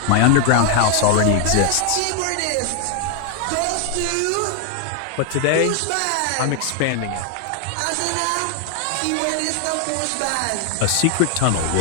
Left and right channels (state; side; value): different; both; correlation 0.00